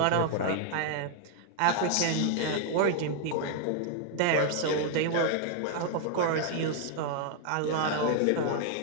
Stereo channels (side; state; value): both; different; correlation 0.00